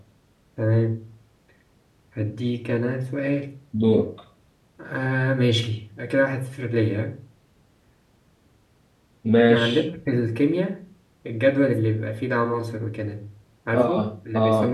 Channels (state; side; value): identical; both; correlation 1.00